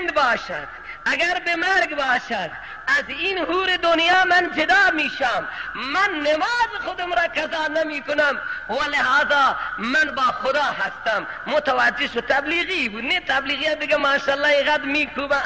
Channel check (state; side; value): identical; both; correlation 1.00